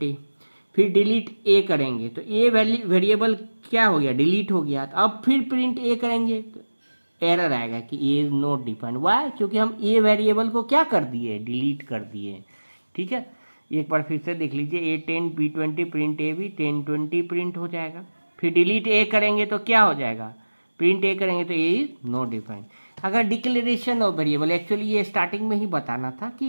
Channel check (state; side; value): inverted; both; correlation -1.00